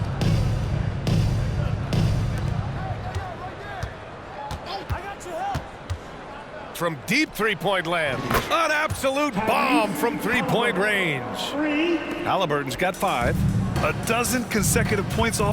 From deep three-point land. An absolute bomb from three-point range. Halliburton's got 5. A dozen consecutive points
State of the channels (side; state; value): both; identical; correlation 1.00